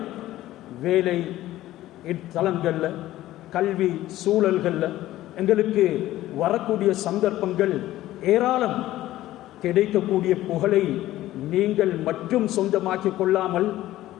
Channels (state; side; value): quieter; right; 15.0 dB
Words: வேலை தளங்கள்ல, கல்வி சூழல்கள்ல எங்களுக்கு வரக்கூடிய சந்தர்ப்பங்கள் ஏராளம். கிடைக்கக்கூடிய புகழை நீங்கள் மட்டும் சொந்தமாக்கிக் கொள்ளாமல்